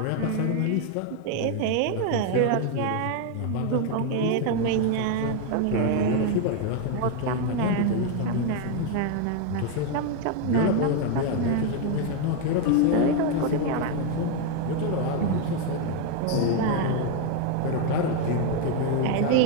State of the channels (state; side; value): different; both; correlation 0.01